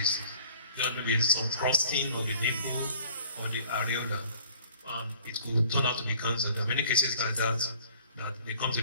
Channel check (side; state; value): both; inverted; correlation -0.52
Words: There may be some crusting of the nipple or the areola, and it could turn out to be cancer. There are many cases like that they come to